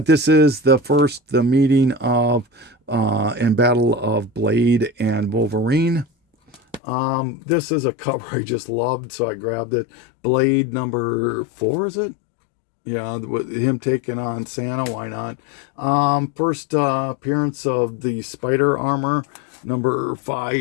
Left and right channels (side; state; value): right; drops out; at 6.8 s